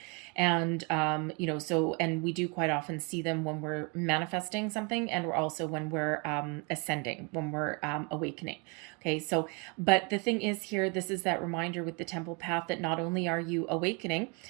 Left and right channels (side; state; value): left; quieter; 32.8 dB